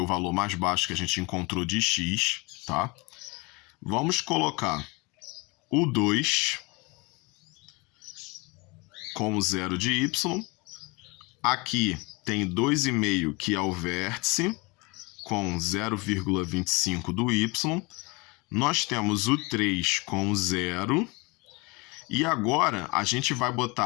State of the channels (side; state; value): right; quieter; 26.9 dB